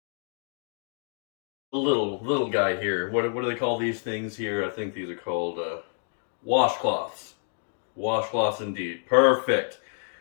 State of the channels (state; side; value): silent; right; digital silence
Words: a little guy here. What do they call these things here? I think these are called washcloths. Washcloths indeed. Perfect.